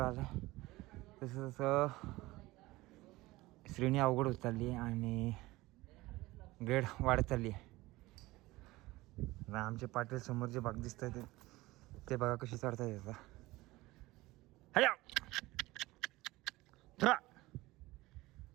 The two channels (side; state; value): left; quieter; 19.5 dB